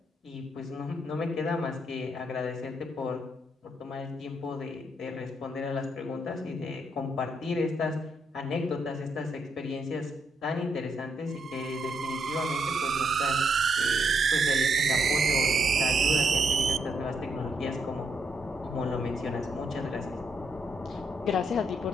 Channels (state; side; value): normal; both; correlation 0.76